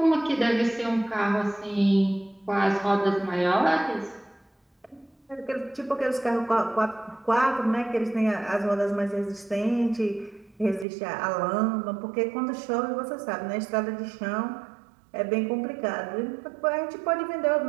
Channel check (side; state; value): left; drops out; at 10.9 s